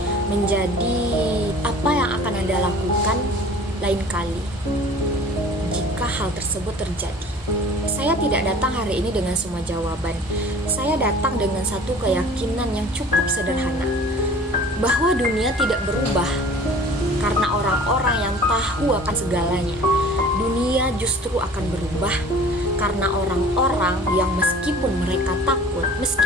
menjadi apa yang akan Anda lakukan lain kali jika hal tersebut terjadi. Saya tidak datang hari ini dengan semua jawaban. Saya datang dengan satu keyakinan yang cukup sederhana, bahwa dunia tidak berubah karena orang-orang yang tahu akan segalanya. Dunia justru akan berubah karena orang-orang yang meskipun mereka takut,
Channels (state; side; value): normal; both; correlation 0.46